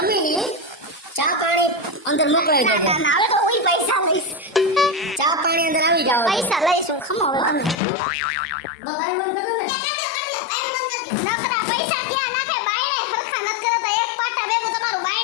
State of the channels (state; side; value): drops out; right; at 7.8 s